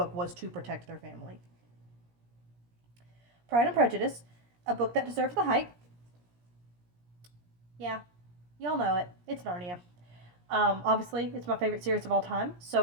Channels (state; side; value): late; left; 17 ms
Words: was to protect their family. Pride and Prejudice, a book that deserves the hype. Yeah, y'all know it. It's Narnia. Obviously, it's my favorite series of all time,